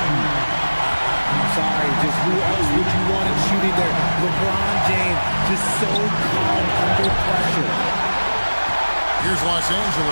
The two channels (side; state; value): both; inverted; correlation -1.00